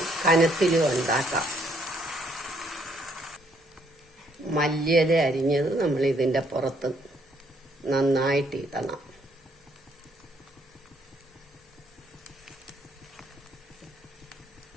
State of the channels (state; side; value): normal; both; correlation 0.69